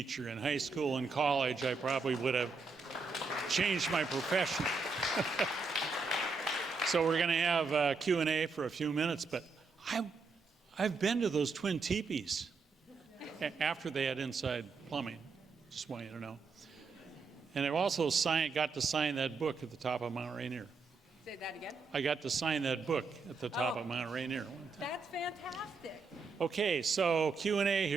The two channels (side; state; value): left; quieter; 4.3 dB